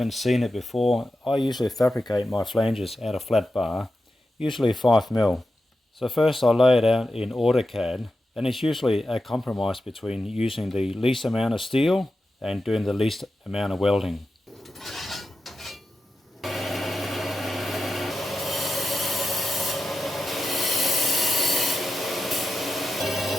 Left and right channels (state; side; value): normal; both; correlation 0.90